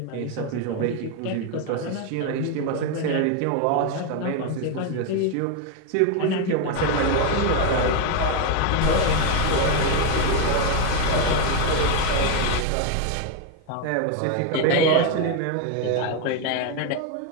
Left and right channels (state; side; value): different; both; correlation 0.01